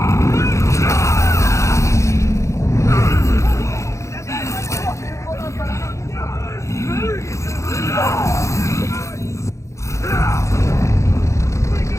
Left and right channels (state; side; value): late; right; 0.14 ms